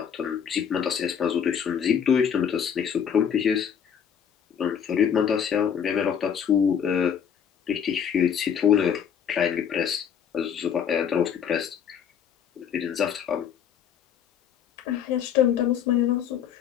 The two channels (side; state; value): right; quieter; 8.1 dB